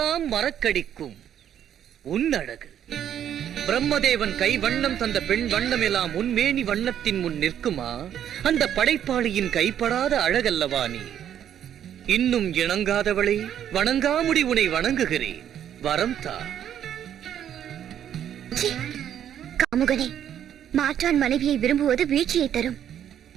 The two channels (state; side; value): quieter; left; 10.0 dB